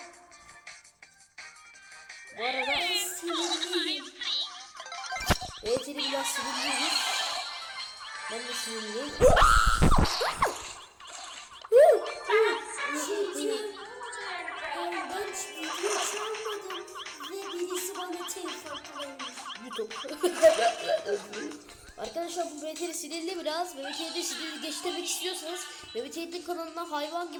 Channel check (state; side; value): identical; both; correlation 1.00